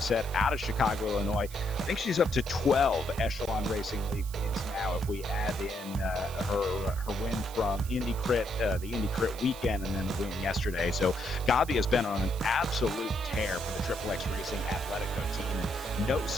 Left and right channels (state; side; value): noise; right; hiss, 16 dB below the sound